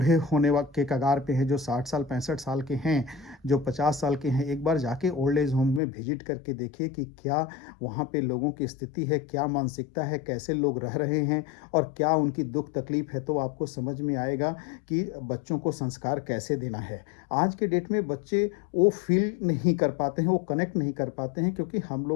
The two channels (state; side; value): drops out; right; at 5.8 s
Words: होने के कगार पे हैं, जो 60 साल 65 साल के हैं, जो 50 साल के हैं, एक बार जाके ओल्ड एज होम में विज़िट करके देखिए कि क्या वहाँ पे लोगों की स्थिति है, क्या मानसिकता है, कैसे लोग रह रहे हैं और क्या उनकी दुःख तकलीफ़ है। तो आपको समझ में आएगा कि बच्चों को संस्कार कैसे देना है। आज के डेट में बच्चे वो फ़ील नहीं कर पाते हैं, वो कनेक्ट नहीं कर पाते हैं, क्योंकि हम